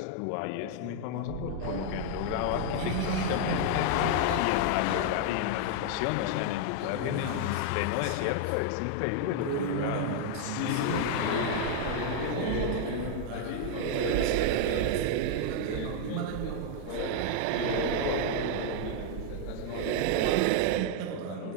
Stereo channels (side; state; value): both; different; correlation 0.00